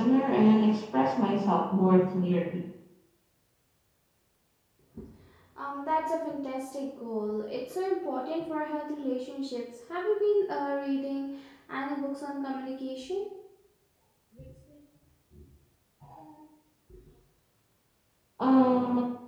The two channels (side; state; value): both; identical; correlation 1.00